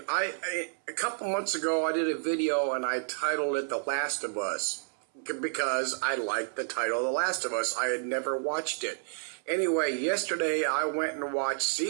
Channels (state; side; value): silent; left; 58 dB below the other